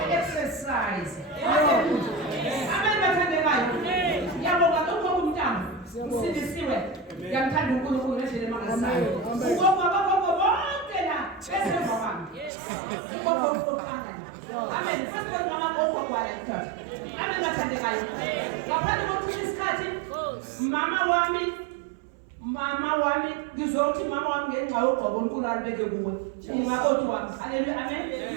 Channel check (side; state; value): left; drops out; at 12.5 s